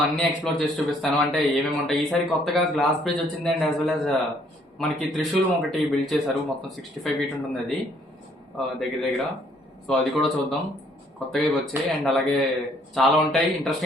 అన్ని ఎక్స్ప్లోర్ చేసి చూపిస్తాను. అంటే ఏమేమి ఉంటాయి. ఈసారి కొత్తగా గ్లాస్ బ్రిడ్జ్ వచ్చింది అండ్ యాజ్ వెల్ యాజ్ మనకి త్రిశూలం ఒకటి బిల్డ్ చేశారు. మొత్తం 65 feet ఉంటుంది అది దగ్గర. సో అది కూడా చూద్దాం. కొత్తగా వచ్చాయి అండ్ అలాగే చాలా ఉంటాయి.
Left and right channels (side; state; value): both; normal; correlation 0.64